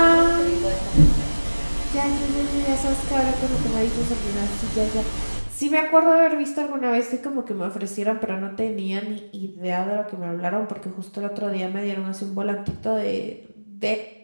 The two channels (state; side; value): inverted; both; correlation -1.00